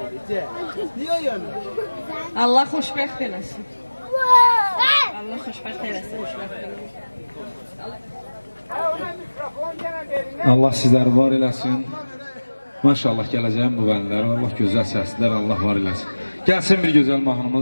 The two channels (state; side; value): inverted; both; correlation -1.00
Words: Niye ayına? Allah xoşbəxt eləsin. Allah xoşbəxt eləsin. Allah sizləri var eləsin. Maşallah gələcəyim bu vənlər. Allah gözəl səslər, Allah var eləsin. Gəlsin bir gözəl